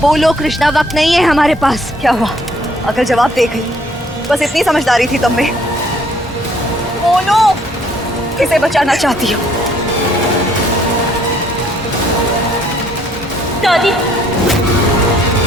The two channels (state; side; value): normal; both; correlation 0.63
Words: बोलो कृष्णा, वक्त नहीं है हमारे पास। क्या हुआ? अगर जवाब दे गई, बस इतनी समझदारी थी तुम में। बोलो किसे बचाना चाहती हो? दादी,